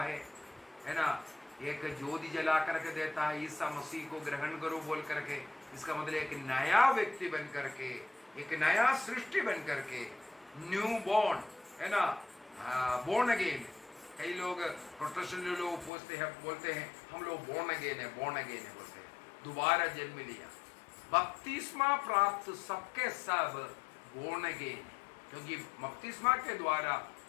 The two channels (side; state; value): right; drops out; at 15.9 s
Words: है ना, एक ज्योति जला करके देता है, ईसा मसीह को ग्रहण करो बोल करके। इसका मतलब एक नया व्यक्ति बन करके, एक नया सृष्टि बन करके, न्यू बॉर्न, है ना, बोर्न अगेन। कई लोग प्रोटेस्टेंट लोग बोलते हैं हम लोग बोर्न अगेन है बोलते हैं, दोबारा जन्म लिया। बपतिस्मा प्राप्त सबके सब बोर्न अगेन, क्योंकि बपतिस्मा के द्वारा